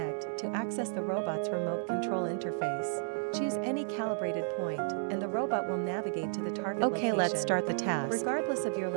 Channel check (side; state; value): left; silent; 56 dB below the other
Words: to access the robot's remote control interface. Choose any calibrated point, and the robot will navigate to the target location. Okay, let's start the task. Regardless of your